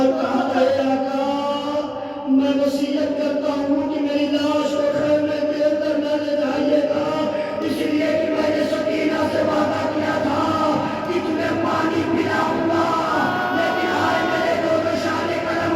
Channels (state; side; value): identical; both; correlation 1.00